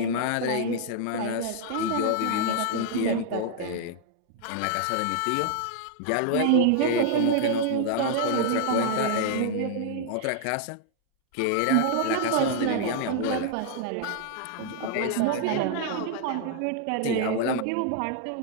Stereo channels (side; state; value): both; different; correlation -0.01